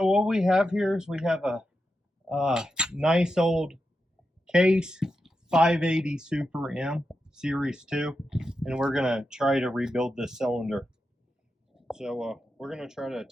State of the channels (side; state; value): both; normal; correlation 0.88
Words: what we have here is we have a nice old Case 580 Super M Series 2, and we're going to try to rebuild this cylinder. So we're going to try to